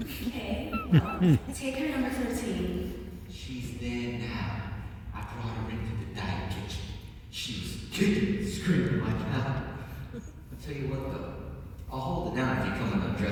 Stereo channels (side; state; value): both; identical; correlation 1.00